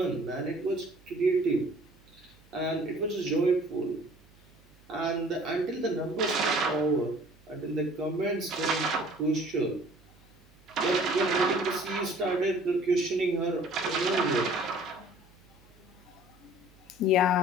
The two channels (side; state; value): right; noise; hum, 28 dB below the sound